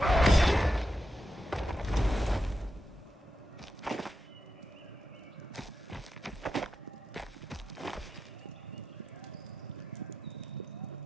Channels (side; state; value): both; normal; correlation 0.88